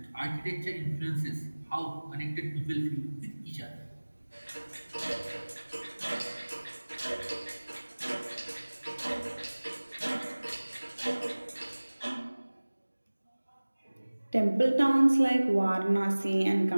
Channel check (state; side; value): inverted; both; correlation -1.00